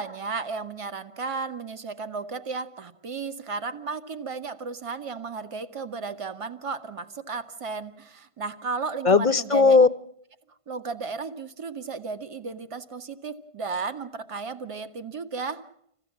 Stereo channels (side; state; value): left; late; 1.5 ms